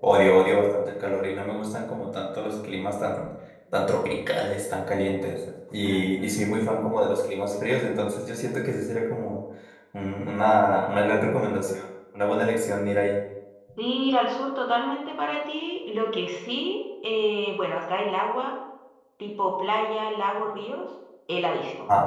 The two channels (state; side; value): identical; both; correlation 1.00